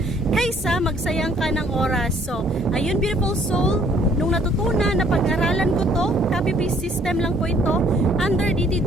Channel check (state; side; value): normal; both; correlation 0.62